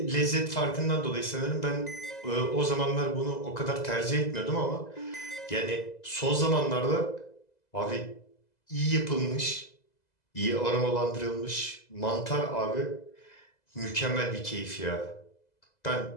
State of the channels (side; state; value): right; late; 2.0 ms